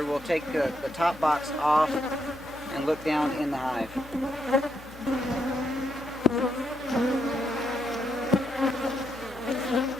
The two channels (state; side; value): noise; left; hum, 19 dB below the sound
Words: We'll take the top box off and look down in the hive.